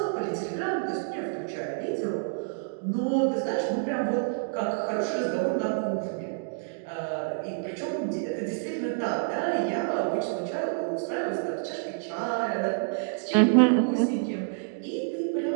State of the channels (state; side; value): silent; left; digital silence